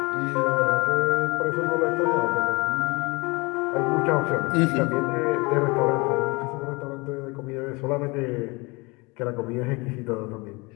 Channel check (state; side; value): quieter; right; 26.2 dB